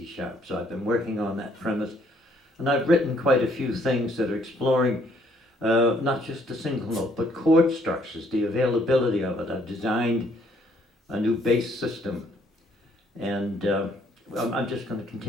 sharp. So I've been working on that premise. And I've written quite a few things that are exploring not just the single note, but chord structures, the availability of it. I've designed a new bass system, and I'm just going to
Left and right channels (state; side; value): normal; both; correlation 0.66